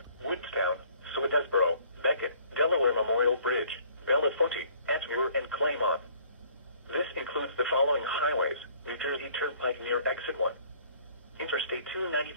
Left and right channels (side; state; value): both; inverted; correlation -0.57